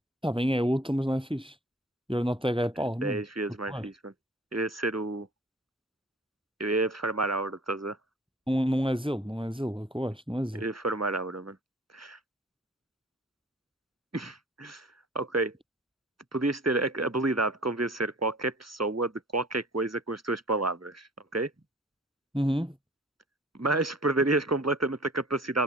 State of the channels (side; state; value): both; normal; correlation 0.48